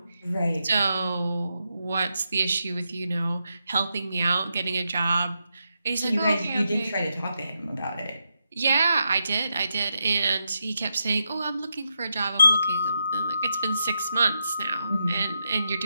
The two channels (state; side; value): inverted; both; correlation -0.85